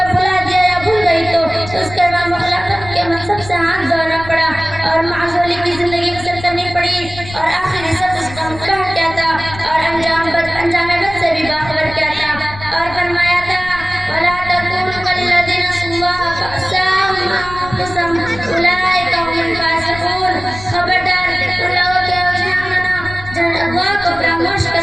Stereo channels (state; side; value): noise; left; rumble, 14 dB below the sound